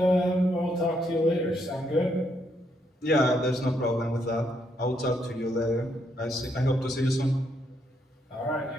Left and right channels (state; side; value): normal; both; correlation 0.75